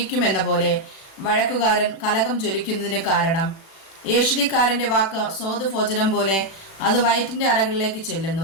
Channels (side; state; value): right; late; 36 ms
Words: പോലെ വഴക്കുകാരൻ കലകം ജ്വലിക്കുന്നതിന് കാരണം. ഏഷണിക്കാരൻ്റെ വാക്ക് സ്വാദുഭോജനം പോലെ, അത് വയറ്റിൻ്റെ അറകളിലേക്ക്